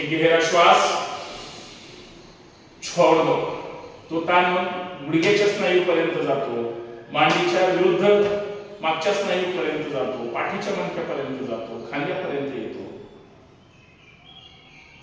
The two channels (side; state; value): both; identical; correlation 1.00